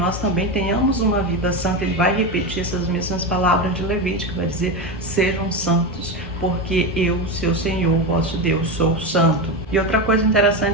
também tenhamos uma vida santa. Ele vai repetir essas mesmas palavras de Levítico, vai dizer: sejam santos, porque eu, seu Senhor, vosso Deus, sou santo. E outra coisa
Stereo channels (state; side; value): normal; both; correlation 0.16